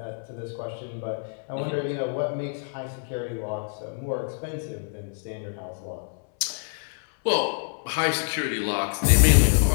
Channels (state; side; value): silent; right; 61 dB below the other